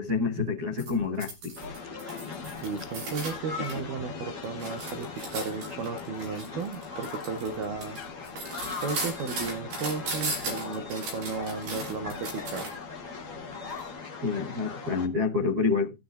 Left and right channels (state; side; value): late; left; 12 ms